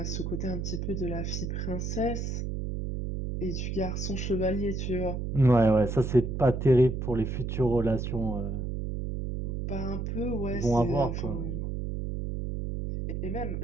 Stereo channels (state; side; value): noise; right; hum, 3 dB below the sound